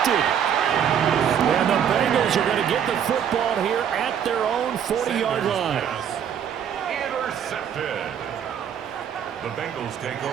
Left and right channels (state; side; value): quieter; left; 8.6 dB